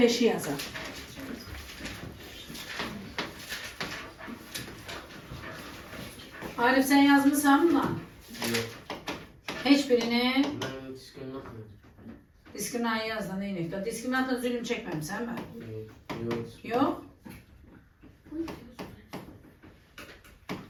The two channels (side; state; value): both; identical; correlation 1.00